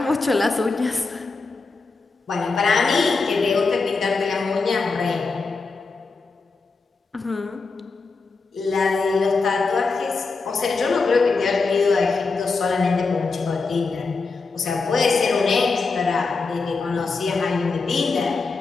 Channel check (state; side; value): quieter; right; 4.2 dB